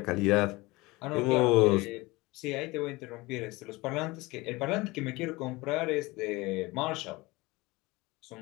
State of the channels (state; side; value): quieter; right; 22.2 dB